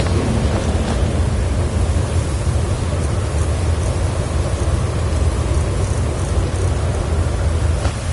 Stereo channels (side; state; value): both; identical; correlation 1.00